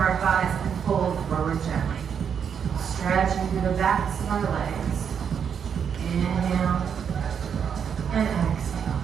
our thighs and fold forward gently. Stretching through the backs of our legs. Inhale and exhale.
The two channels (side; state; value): left; quieter; 7.5 dB